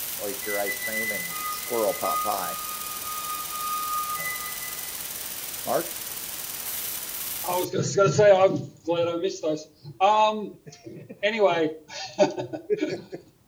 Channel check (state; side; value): identical; both; correlation 1.00